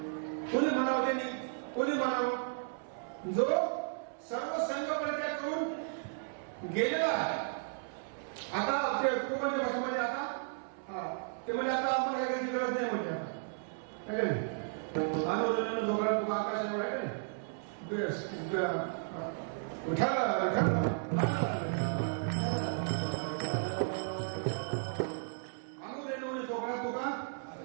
कोणी म्हणावं त्यांनी, कोणी म्हणावं जो सर्व संघ परित्याग करून गेलेला आहे. आता ते कोकणच्या भाषेमध्ये आता ते म्हणजे आता आम्हाला काही गरज नाही म्हणजे आता काय नाही आंदोलन जोगळा तुका आकाश एवढा आहे का नाही उठाला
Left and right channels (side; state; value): left; silent; 55 dB below the other